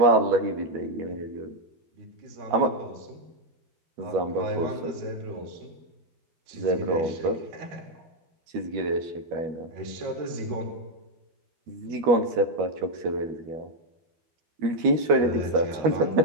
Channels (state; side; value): late; left; 12 ms